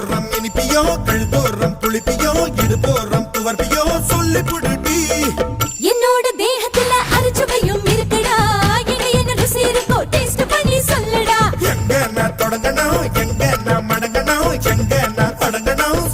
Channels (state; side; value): identical; both; correlation 1.00